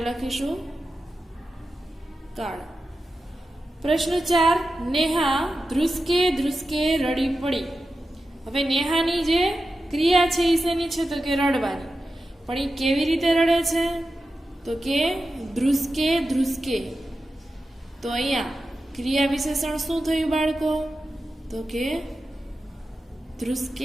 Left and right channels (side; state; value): both; normal; correlation 0.92